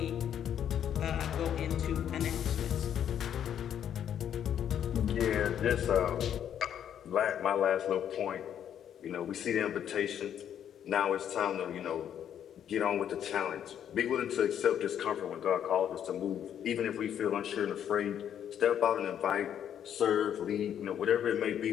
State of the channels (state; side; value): quieter; right; 9.5 dB